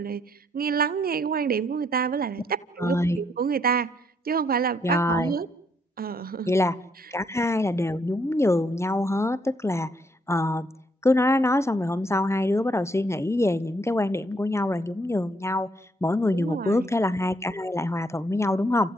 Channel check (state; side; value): normal; both; correlation 0.71